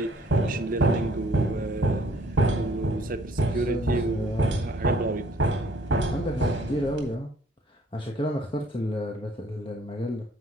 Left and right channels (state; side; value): normal; both; correlation 0.60